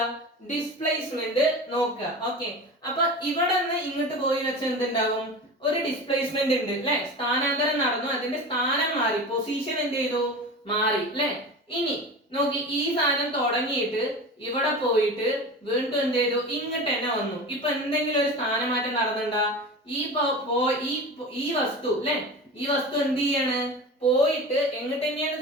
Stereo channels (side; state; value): both; normal; correlation 0.31